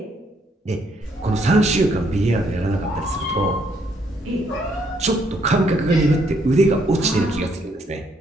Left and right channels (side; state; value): both; normal; correlation 0.71